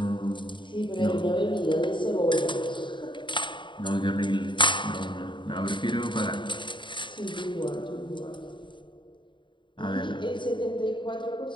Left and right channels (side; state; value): right; late; 0.23 ms